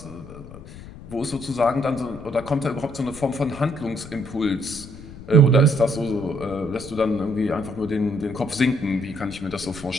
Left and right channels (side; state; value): left; noise; rumble, 15 dB below the sound